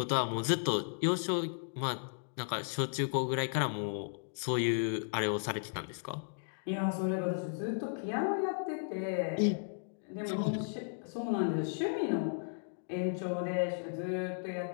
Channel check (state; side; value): silent; right; digital silence